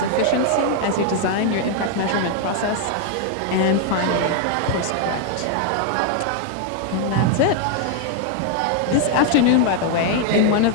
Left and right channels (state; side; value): different; both; correlation 0.00